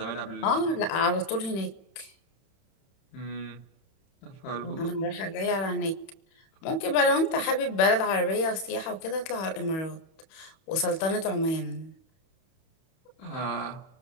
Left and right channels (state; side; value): late; right; 31 ms